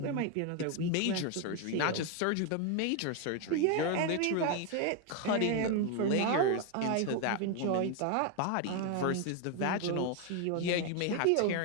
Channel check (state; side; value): different; both; correlation 0.01